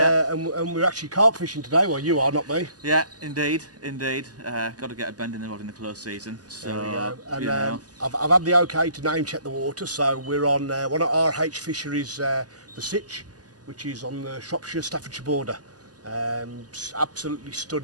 And we're actually carp fishing today. Well, you are, not me. Yeah, indeed. Got to get a bend in the rod in the close season. So, There we go. And you know. I've had the okay to name check the water, so we're on one of RH fisheries, the Sitch, which is on the Shropshire-Staffordshire border. Absolutely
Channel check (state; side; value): late; left; 0.68 ms